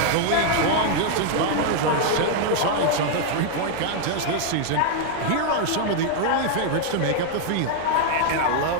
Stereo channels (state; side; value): different; both; correlation 0.00